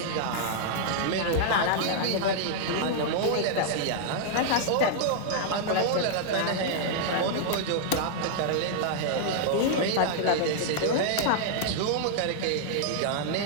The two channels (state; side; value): different; both; correlation -0.01